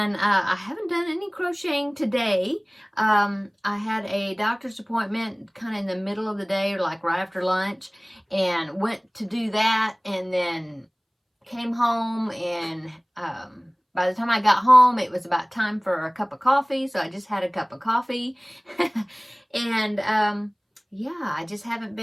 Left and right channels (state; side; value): identical; both; correlation 1.00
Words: I haven't done any crocheting today. I had a doctor's appointment kind of in the middle of the day, or like right after lunch, and went to do that, and then came home, and by the time I got home, it was about time for a cup of coffee, so I just had a cup of coffee. And yeah,